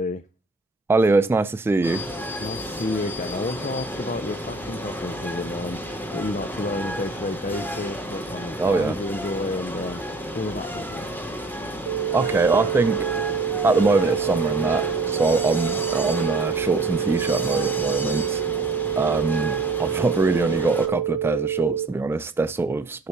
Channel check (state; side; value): quieter; left; 3.1 dB